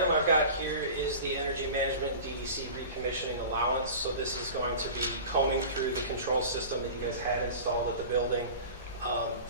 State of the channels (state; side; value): inverted; both; correlation -0.36